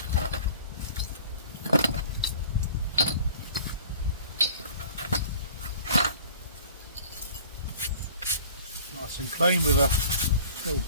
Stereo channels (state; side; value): inverted; both; correlation -0.47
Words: Nice and clean with a little